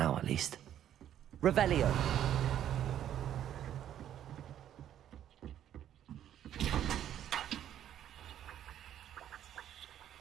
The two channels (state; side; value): quieter; left; 10.8 dB